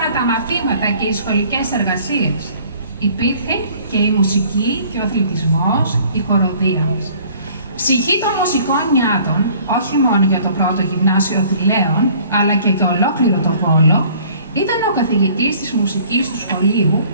τα μαθήματα και οι σχολικές εργασίες. Υπήρχε και η μουσική και ο αθλητισμός, η χοροδία μας. Ψυχή των μουσικών νιάτων, όχι μόνο για το πρώτο γυμνάσιο Θηλαίων, αλλά και για ολόκληρο το Βόλο, ήταν ο καθηγητής της μουσικής του σχολείου,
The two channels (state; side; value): inverted; both; correlation -0.54